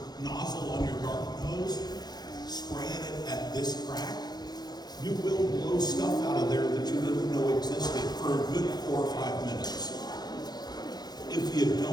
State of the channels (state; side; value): late; right; 0.19 ms